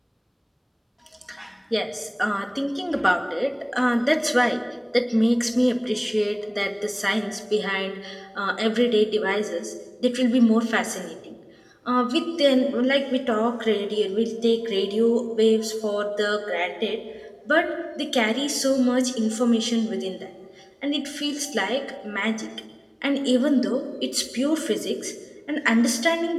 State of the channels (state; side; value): identical; both; correlation 1.00